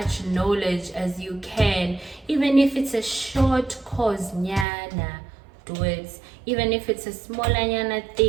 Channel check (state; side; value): drops out; left; at 4.7 s